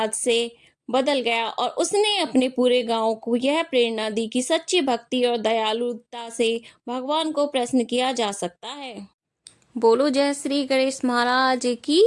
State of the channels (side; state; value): both; identical; correlation 1.00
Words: से बदल गया और उसने अपने पूरे गांव को यह प्रेरणा दी कि सच्ची भक्ति और दयालुता से भगवान को प्रसन्न किया जा सकता है। बोलो जय श्री गणेश महाराज की